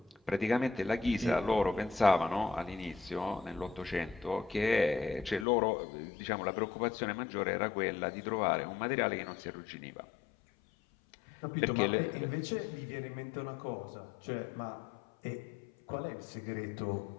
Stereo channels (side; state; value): right; drops out; at 5.5 s